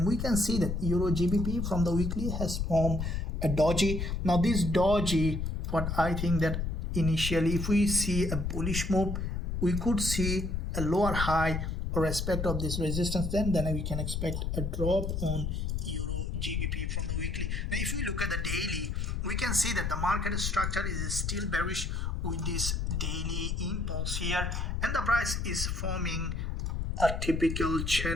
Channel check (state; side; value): noise; left; rumble, 2 dB below the sound